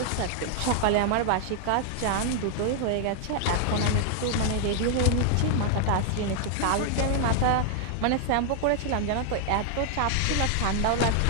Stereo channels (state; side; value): different; both; correlation 0.00